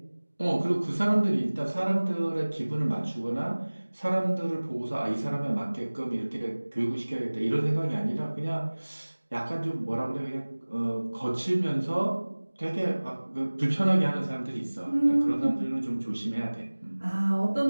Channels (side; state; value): both; inverted; correlation -1.00